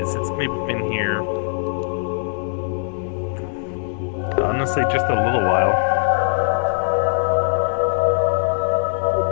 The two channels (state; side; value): silent; right; digital silence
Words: it's maybe been here, honestly, just a little while.